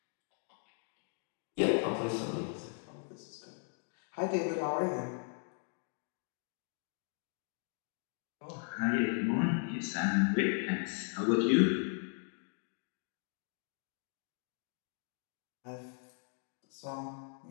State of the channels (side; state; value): right; silent; 53 dB below the other